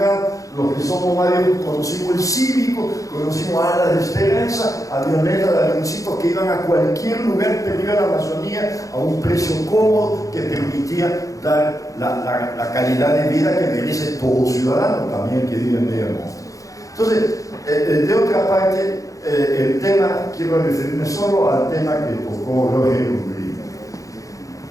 los que somos mayores conocimos el Cívico, conocimos Alas de Esperanza, avionetas de avioncitos que iban a cualquier lugar perdido de la Amazonía a un precio cómodo que permitía dar la calidad de vida que merece todo ciudadano, también el que vive en medio del mundo. Entonces, de otra parte, el tema, quiero referirme solo al tema que tocó Roger Umbría.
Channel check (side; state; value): right; late; 0.16 ms